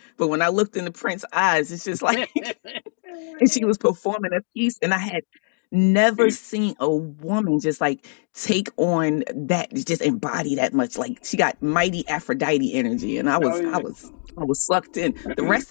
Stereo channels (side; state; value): right; silent; 64 dB below the other